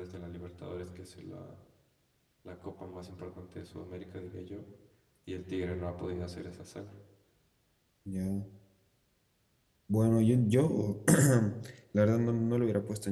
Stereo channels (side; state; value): both; identical; correlation 1.00